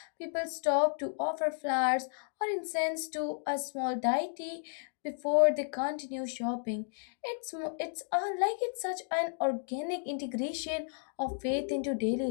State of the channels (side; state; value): right; silent; digital silence